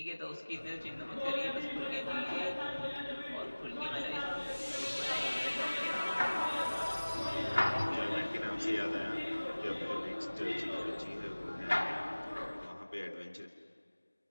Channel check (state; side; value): inverted; both; correlation -1.00